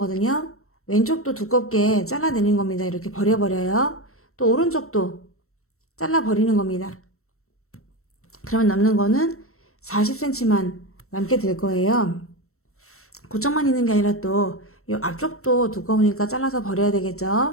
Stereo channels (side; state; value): right; late; 0.63 ms